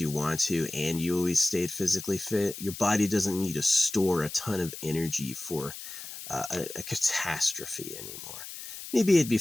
want to and you always stayed physically fit. Your body doesn't need to store a ton of energy for a catastrophe anymore. Maybe it'd be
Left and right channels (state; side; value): noise; left; hiss, 11 dB below the sound